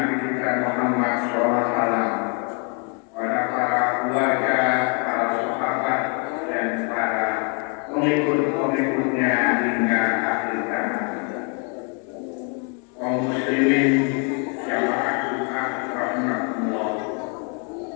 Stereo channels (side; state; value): right; quieter; 38.3 dB